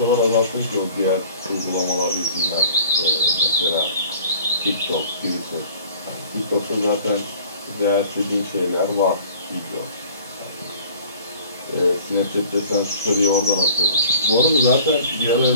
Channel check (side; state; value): both; inverted; correlation -0.48